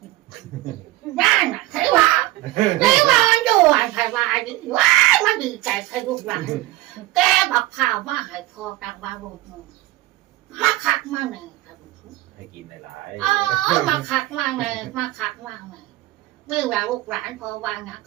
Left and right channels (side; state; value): left; quieter; 16.8 dB